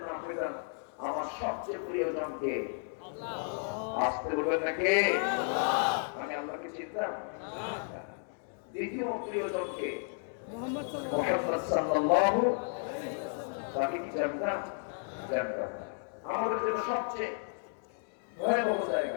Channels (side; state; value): right; silent; 56 dB below the other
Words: না পেতাম, আমার সবচেয়ে প্রিয়জনকে আসতে বলবেন না কে? আমি আল্লাহকে চিনতাম। দ্বিতীয় প্রিয়জনকে মুহাম্মদ সাল্লাল্লাহু, তাকে কি জানতাম? জানতাম। আমাদের জন্য সবচেয়ে ভয়াবহ